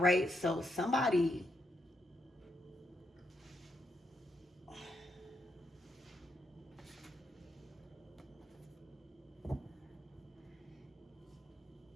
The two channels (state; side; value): normal; both; correlation 0.81